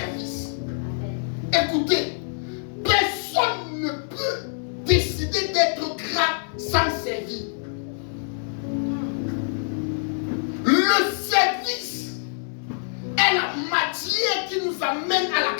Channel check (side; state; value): right; silent; 62 dB below the other